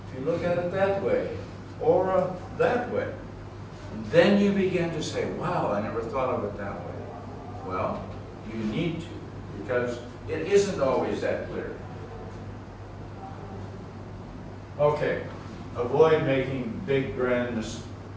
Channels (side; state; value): both; identical; correlation 1.00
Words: if you look at it that way, or that way, then you begin to say, wow, I never thought of it that way. Well, you need to, because it isn't always that clear. Okay, avoid making big, grand